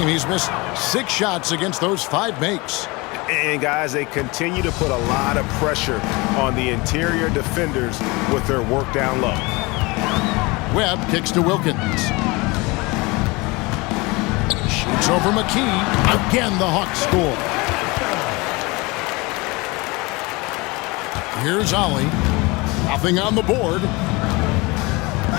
He's missed 6 shots against those 5 makes. And guys, they continue to put a lot of pressure on the interior defenders with their work down low. Webb kicks to Wilkins. Shoots over McKee. Again, the Hawks score. Here's Ollie. Nothing on the board.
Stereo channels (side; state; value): right; quieter; 24.9 dB